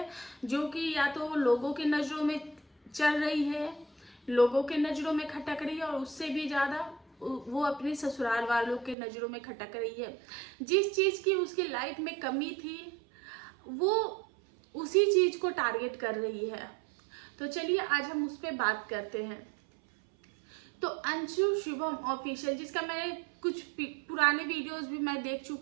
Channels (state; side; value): drops out; left; at 9.0 s